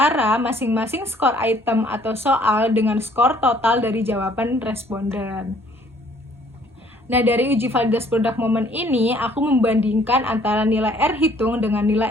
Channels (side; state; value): both; normal; correlation 0.60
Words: masing-masing skor item atau soal dengan skor total dari jawaban responden. Nah, dari uji validitas produk momen ini, aku membandingkan antara nilai R hitung dengan